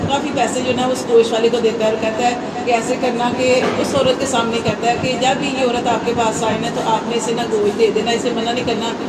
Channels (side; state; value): both; identical; correlation 1.00